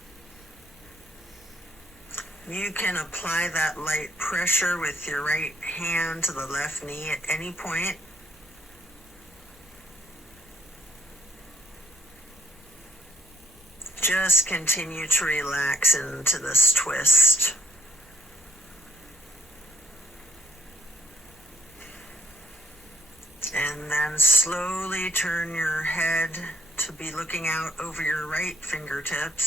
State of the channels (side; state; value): both; normal; correlation 0.65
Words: You can apply that light pressure with your right hand to the left knee at any point. Just continue to relax into this twist. And then slowly turn your head to be looking out over your right